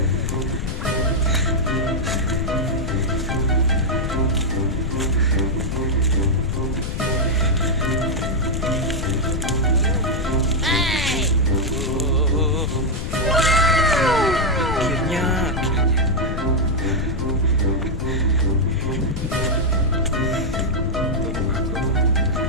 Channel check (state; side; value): noise; left; rumble, 4 dB below the sound